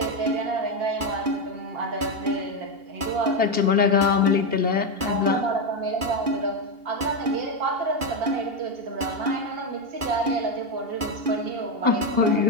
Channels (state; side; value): late; left; 2.8 ms